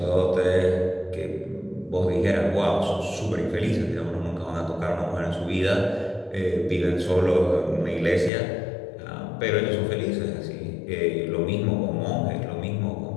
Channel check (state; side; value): drops out; right; at 8.3 s